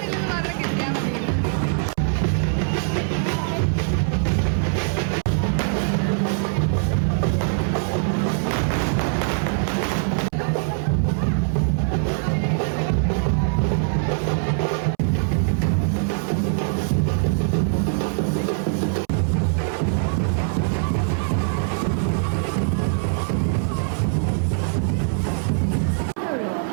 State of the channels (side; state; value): left; silent; 64 dB below the other